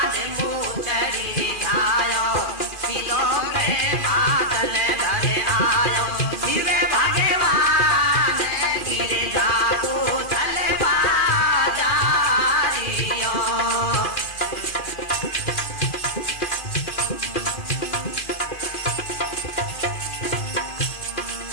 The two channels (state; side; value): late; right; 2.4 ms